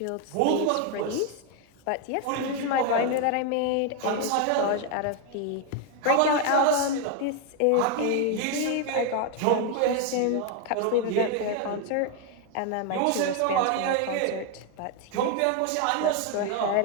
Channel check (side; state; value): both; different; correlation 0.01